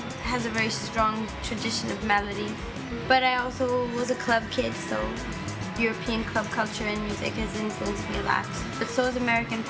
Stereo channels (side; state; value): both; identical; correlation 1.00